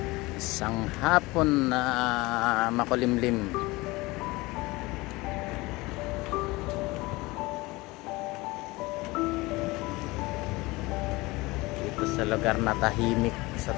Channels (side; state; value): right; quieter; 22.0 dB